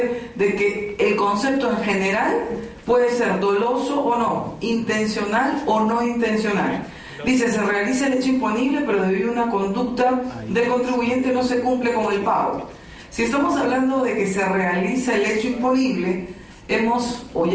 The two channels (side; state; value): both; identical; correlation 1.00